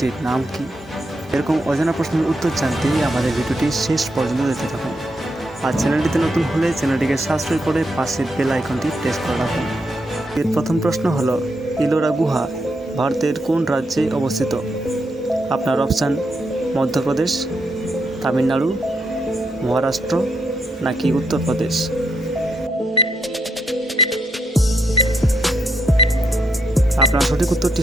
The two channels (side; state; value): both; normal; correlation 0.79